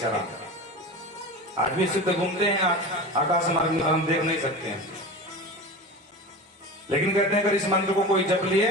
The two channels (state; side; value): normal; both; correlation 0.30